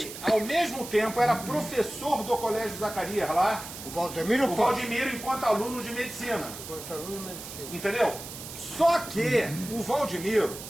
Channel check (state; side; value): noise; right; hiss, 11 dB below the sound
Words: Ele, ao mesmo tempo, era professor do Colégio Zacarias lá, O Valdemiro o Pote. Valdemiro enquanto aluno de medicina. Enquanto aluno de medicina. Entendeu? Só que o Valdemiro,